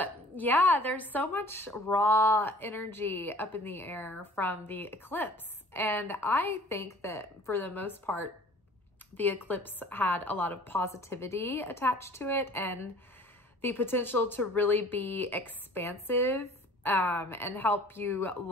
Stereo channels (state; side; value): normal; both; correlation 0.48